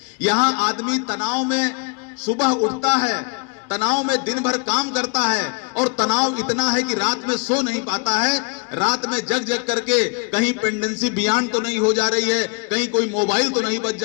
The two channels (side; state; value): right; quieter; 34.5 dB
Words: यहां आदमी तनाव में सुबह उठता है, तनाव में दिन भर काम करता है और तनाव इतना है कि रात में सो नहीं पाता है। रात में जग जग करके कहीं पेंडेंसी बियॉन्ड तो नहीं हो जा रही है, कहीं कोई मोबाइल तो नहीं बज